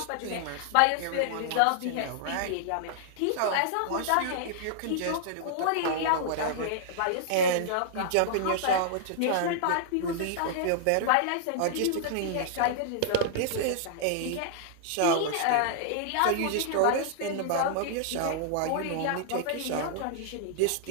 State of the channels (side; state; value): both; different; correlation -0.01